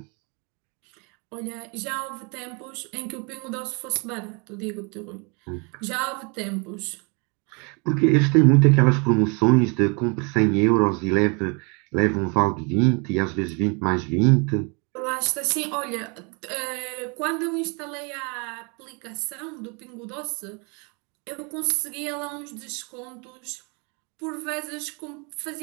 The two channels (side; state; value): left; quieter; 33.0 dB